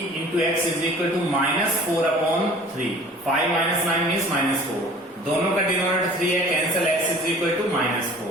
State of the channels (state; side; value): normal; both; correlation 0.47